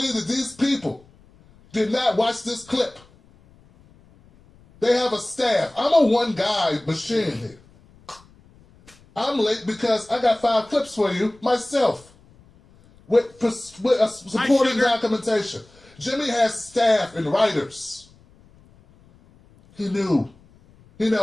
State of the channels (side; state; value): left; noise; rumble, 28 dB below the sound